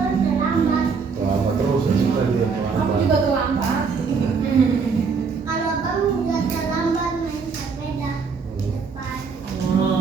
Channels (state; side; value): quieter; left; 5.3 dB